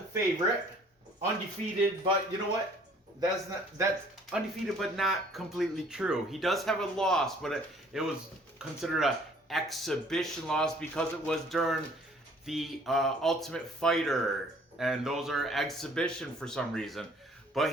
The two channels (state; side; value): normal; both; correlation 0.56